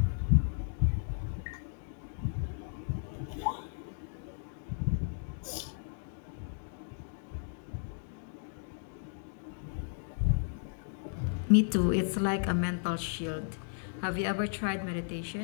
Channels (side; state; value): right; silent; digital silence